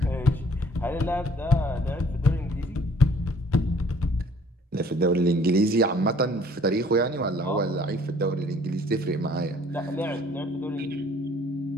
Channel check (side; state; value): both; normal; correlation 0.57